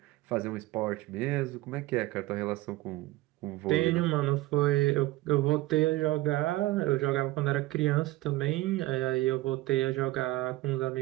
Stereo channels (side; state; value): left; quieter; 18.2 dB